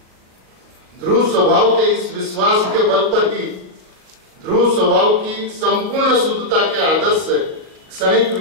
ध्रुव स्वभाव के इस विश्वास के बल पर ही ध्रुव स्वभाव की संपूर्ण शुद्धता के आदर्श से क्षणिक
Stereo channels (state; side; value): late; left; 38 ms